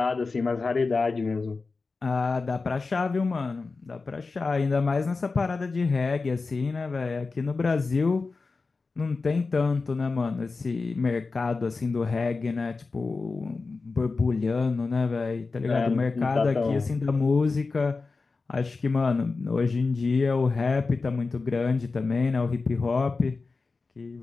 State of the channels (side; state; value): right; quieter; 4.1 dB